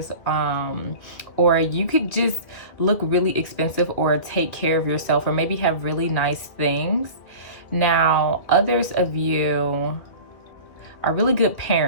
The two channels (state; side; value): late; right; 2.2 ms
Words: or you could just look really expensive or take care of yourself, or maybe have really nice things. Now, others of you are really good